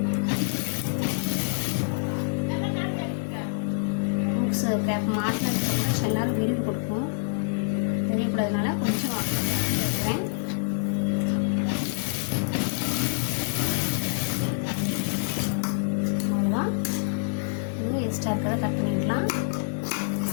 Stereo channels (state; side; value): silent; right; digital silence